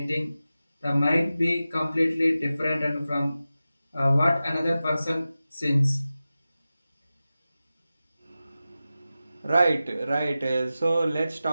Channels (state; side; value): inverted; both; correlation -0.94